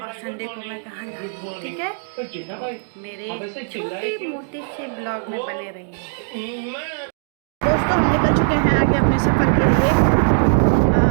संडे को मैं कहाँ जा रही हूँ। ठीक है, तो मेरे छोटे मोटे से ब्लॉग में बने रहिए। दोस्तों, हम निकल चुके हैं आगे अपने सफ़र के लिए।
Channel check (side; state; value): left; silent; digital silence